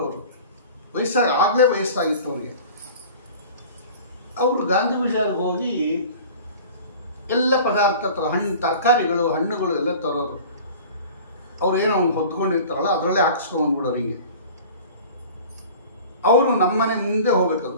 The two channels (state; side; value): inverted; both; correlation -0.42